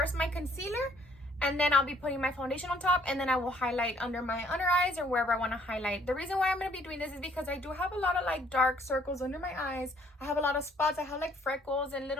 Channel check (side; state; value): both; normal; correlation 0.62